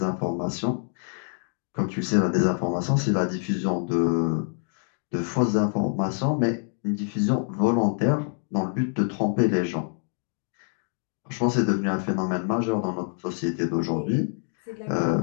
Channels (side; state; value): right; silent; 56 dB below the other